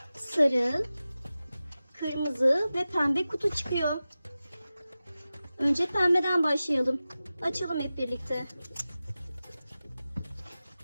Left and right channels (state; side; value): inverted; both; correlation -0.95